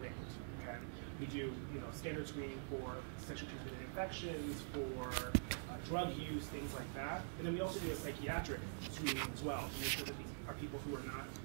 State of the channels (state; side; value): silent; left; digital silence